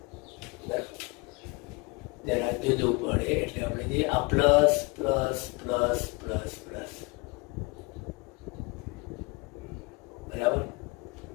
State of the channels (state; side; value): quieter; right; 27.2 dB